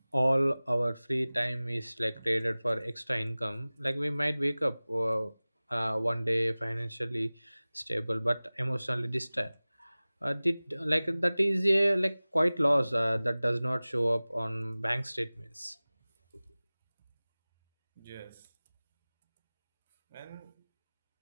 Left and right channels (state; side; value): inverted; both; correlation -0.99